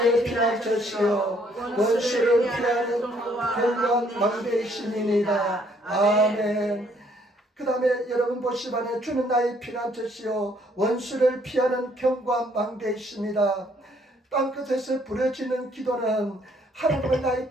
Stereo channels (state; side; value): normal; both; correlation 0.66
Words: 피난처시요 원수를 피하는 견고한 망대이시니이다. 아멘. 그 다음에 여러분 보시반에 주는 나의 피난처시요 원수를 피하는 견고한 망대이십니다. 땅끝에서 부려지는 기도는 하나님을 나의